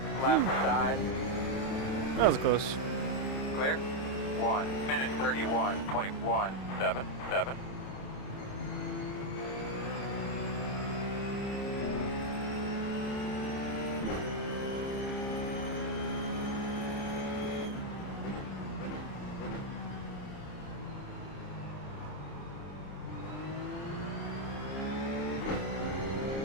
Left side. That was close. Clear. 1 minute 31.177.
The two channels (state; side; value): late; right; 30 ms